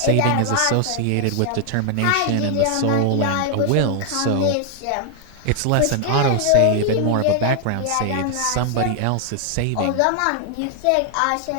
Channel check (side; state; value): both; different; correlation 0.00